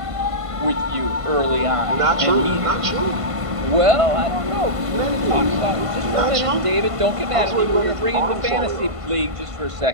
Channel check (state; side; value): late; left; 1.5 ms